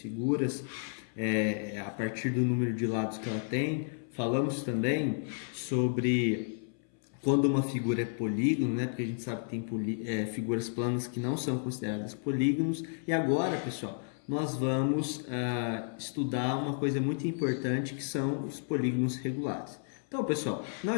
a partir do número de lados que ela tem. Falamos também sobre quando uma figura é polígono, né? Porque a gente sabe que tem figuras planas que não são consideradas polígonos. E agora, pessoal, nós vamos estudar uma coisa muito importante que são os polígonos regulares. Então, pessoal,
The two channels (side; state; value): right; silent; 56 dB below the other